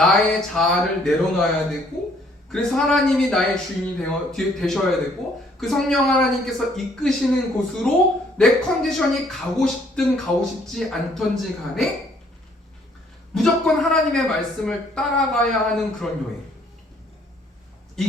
자아를 내려놔야 되고 그래서 하나님이 나의 주인이 되셔야 되고 그 성령 하나님께서 이끄시는 곳으로 내 컨디션이 가고 싶든 가고 싶지 않던지 간에 무조건 하나님의 말씀을 따라가야 하는 그런 여행.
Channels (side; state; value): both; normal; correlation 0.63